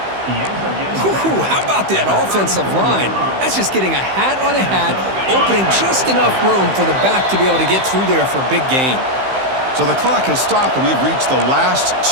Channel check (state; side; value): late; left; 15 ms